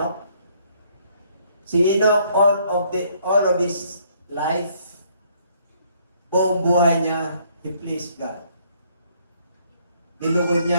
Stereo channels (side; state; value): both; inverted; correlation -0.66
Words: Si Enoch, all of his life, buong buhay niya, he pleased God. Nilugod